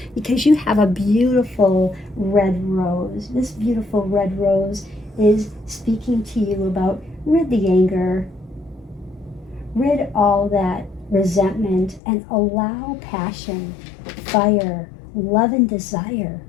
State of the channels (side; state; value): right; drops out; at 12.0 s